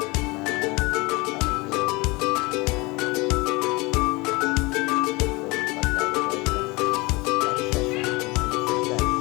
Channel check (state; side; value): quieter; right; 24.6 dB